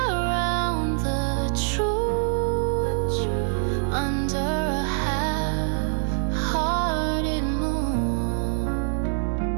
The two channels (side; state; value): left; silent; 56 dB below the other